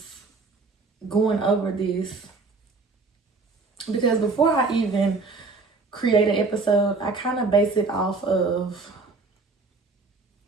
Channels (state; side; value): quieter; left; 3.9 dB